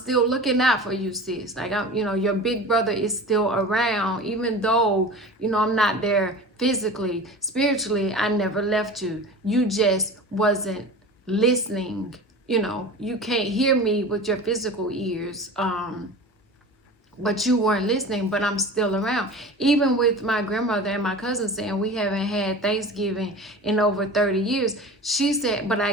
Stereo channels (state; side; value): normal; both; correlation 0.35